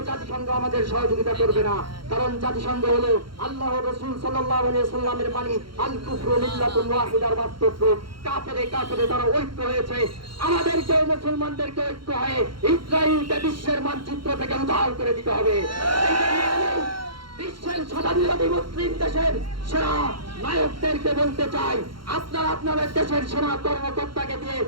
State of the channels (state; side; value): late; left; 0.73 ms